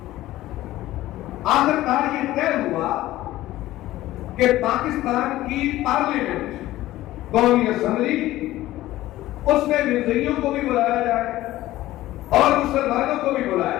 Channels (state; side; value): quieter; right; 15.8 dB